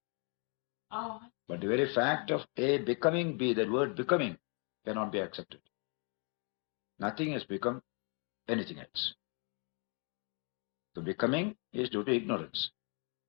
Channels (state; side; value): quieter; right; 37.4 dB